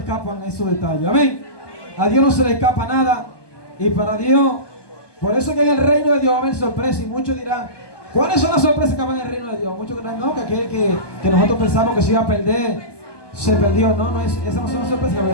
esos detalles. Amén. A Dios no se le escapa nada. Y para Dios, por eso que en el reino de Dios va a haber sorpresas. Y muchos dirán, ¿cuáles son las sorpresas que van en el reino de Dios? Muchos dirán, no, que aquel que nosotros pensamos que se iba a perder, se perdió. No, esas no son las sorpresas que van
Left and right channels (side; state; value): right; late; 1.2 ms